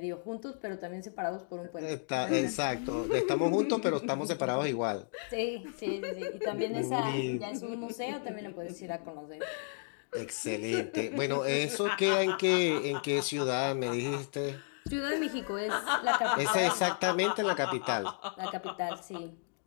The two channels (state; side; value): silent; right; digital silence